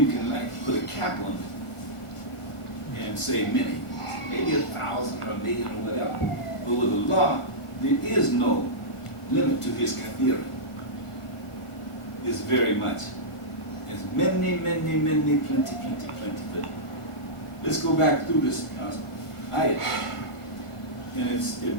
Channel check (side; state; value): right; late; 1.5 ms